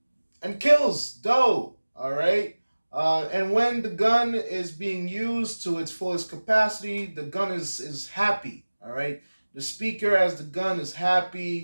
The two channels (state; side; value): inverted; both; correlation -1.00